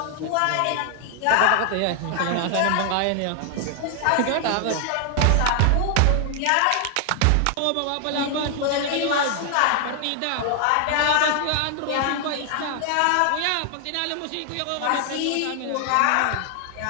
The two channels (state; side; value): different; both; correlation 0.00